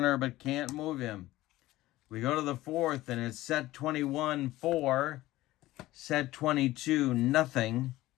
but can't move him. We go to the 4th, and it's set 21-4, set 22-0.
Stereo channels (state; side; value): quieter; right; 16.9 dB